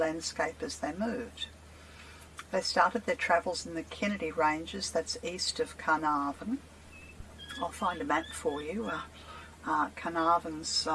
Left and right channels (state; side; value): identical; both; correlation 1.00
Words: as they moved. They started their travels in the Kennedy Ranges, that's east of Carnarvon. I'll find a map for you. Carnarvon's,